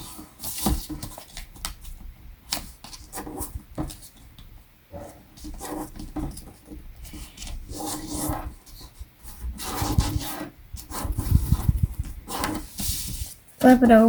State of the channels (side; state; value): both; identical; correlation 1.00